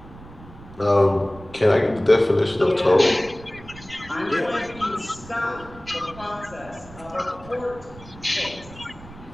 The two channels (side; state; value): right; noise; rumble, 19 dB below the sound